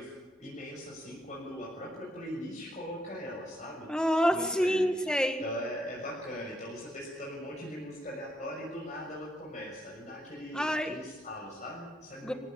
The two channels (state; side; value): normal; both; correlation 0.77